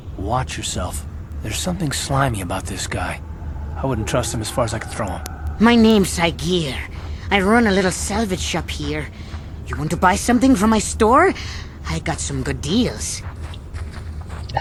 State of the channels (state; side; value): identical; both; correlation 1.00